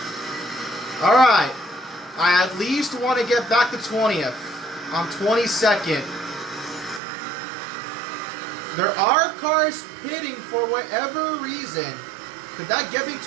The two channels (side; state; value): left; drops out; at 7.0 s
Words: Alright. I at least want to get back to 20th. I'm 22nd. There are cars pitting for whatever reason. Could that get me